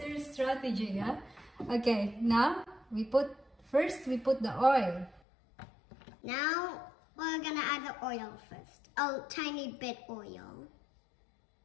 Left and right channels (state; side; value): drops out; right; at 5.2 s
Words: your strategy, yeah? Okay, now we put the oil. Now we're gonna add the oil first. A tiny bit oil.